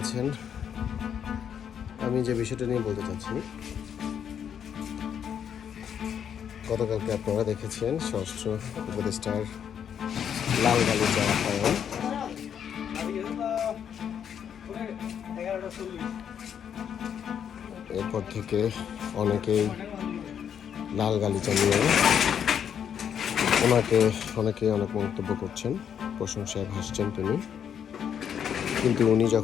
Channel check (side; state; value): right; quieter; 8.4 dB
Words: আছেন? আমি যে বিষয়টা নিয়ে বলতে চাচ্ছি, গতকালকে আপনারা দেখেছেন স্বরাষ্ট্র উপদেষ্টার লাল গালিচা আপ্যায়ন। এরপর থেকে অনেকেই লাল গালিচা নিয়ে অনেকে অনেক মন্তব্য করছেন, প্রশংসায় ভাসছেন তিনি। কিন্তু উনি